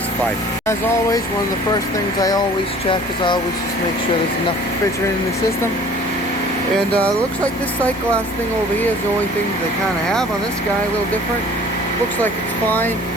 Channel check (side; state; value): both; normal; correlation 0.50